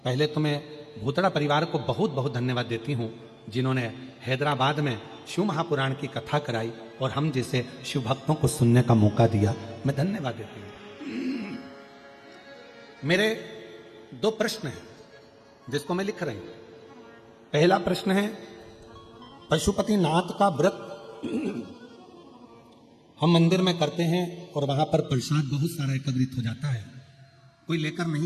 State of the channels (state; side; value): identical; both; correlation 1.00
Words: पहले तो मैं भूतड़ा परिवार को बहुत बहुत धन्यवाद देती हूं जिन्होंने हैदराबाद में शिव महापुराण की कथा कराई और हम जैसे शिव भक्तों को सुनने का मौका दिया, मैं धन्यवाद देती हूं। मेरे 2 प्रश्न हैं जिसको मैं लिख रही हूं। पहला प्रश्न है, पशुपतिनाथ का व्रत हम मंदिर में करते हैं और वहां पर प्रसाद बहुत सारा एकत्रित हो जाता है, कोई लेकर